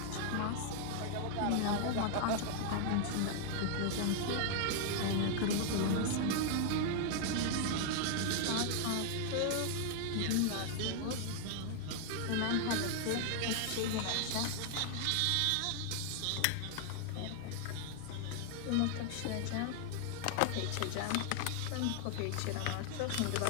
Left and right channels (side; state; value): both; different; correlation 0.00